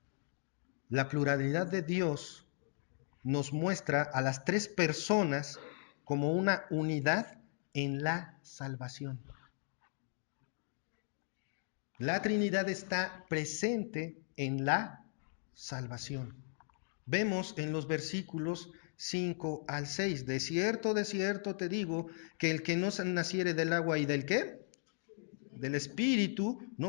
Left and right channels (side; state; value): right; silent; digital silence